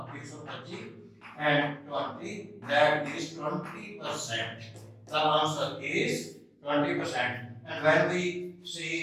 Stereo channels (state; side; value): identical; both; correlation 1.00